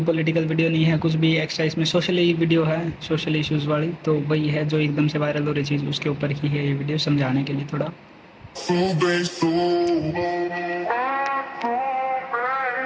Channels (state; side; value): identical; both; correlation 1.00